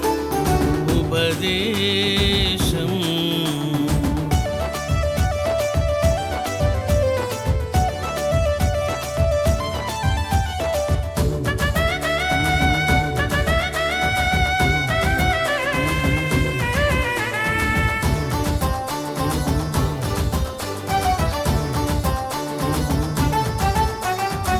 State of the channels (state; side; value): identical; both; correlation 1.00